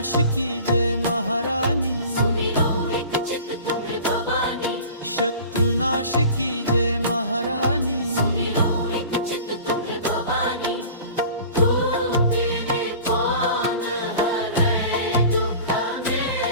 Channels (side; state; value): both; inverted; correlation -0.41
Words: की जय महारानी सुमिरो एक चित तुम्हें भवानी शत्रुनाश की जय महारानी सुमिरो एक चित तुम्हें भवानी तू तेरे कौन हरे दुख